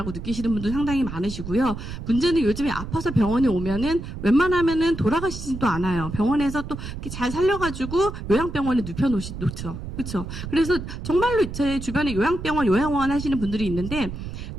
느끼시는 분도 상당히 많으시고요. 문제는 요즘에 아파서 병원에 오면은 웬만하면은 돌아가시지도 않아요. 병원에서 또 이렇게 잘 살려가지고 요양병원에 놓죠. 그렇죠. 그래서 정말로 제 주변에 요양병원, 요양원 하시는 분들이 있는데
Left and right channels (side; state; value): right; noise; rumble, 9 dB below the sound